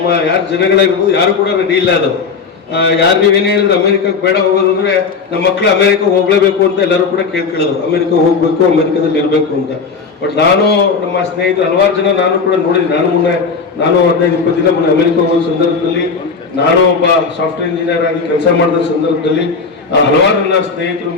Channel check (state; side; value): quieter; right; 5.1 dB